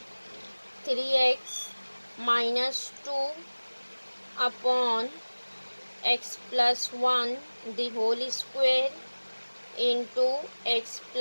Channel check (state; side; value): inverted; both; correlation -1.00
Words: 3x minus 2 upon x plus 1 the whole square into x